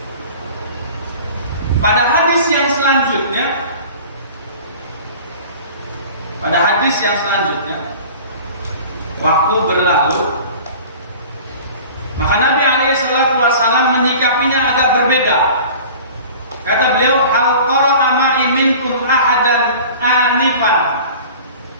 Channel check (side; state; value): both; inverted; correlation -0.42